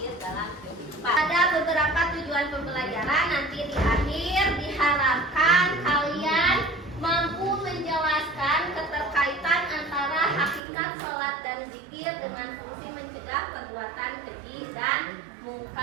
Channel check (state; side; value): drops out; left; at 10.6 s